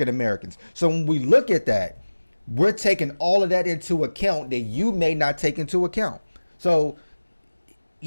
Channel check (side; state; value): both; inverted; correlation -1.00